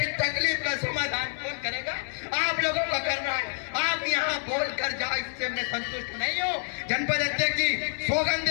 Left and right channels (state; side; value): silent; right; digital silence